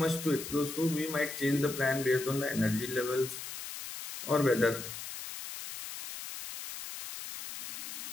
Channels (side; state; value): left; noise; hiss, 8 dB below the sound